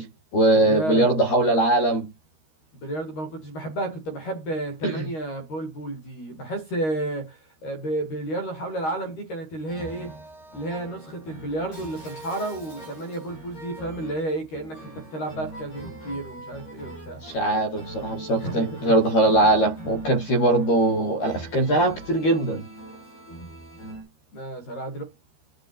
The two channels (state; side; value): late; right; 13 ms